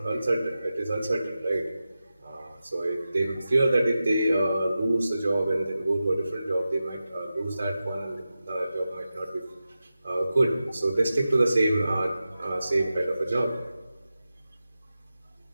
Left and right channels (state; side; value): inverted; both; correlation -0.93